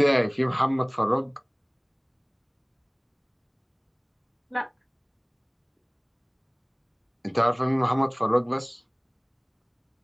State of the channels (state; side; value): identical; both; correlation 1.00